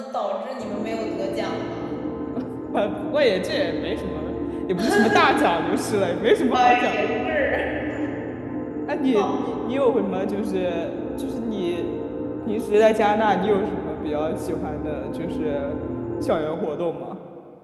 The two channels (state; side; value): identical; both; correlation 1.00